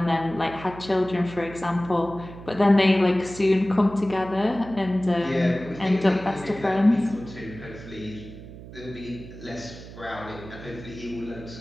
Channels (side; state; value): right; noise; hum, 15 dB below the sound